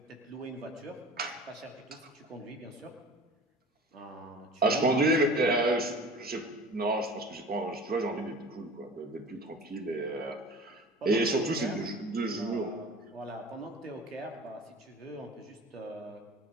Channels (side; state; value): both; normal; correlation 0.40